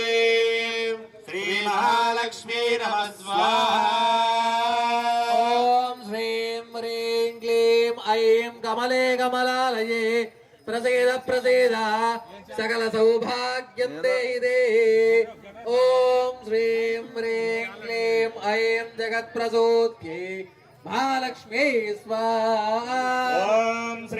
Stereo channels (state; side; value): identical; both; correlation 1.00